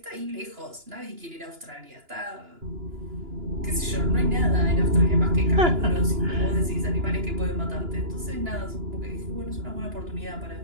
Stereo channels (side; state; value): left; late; 2.9 ms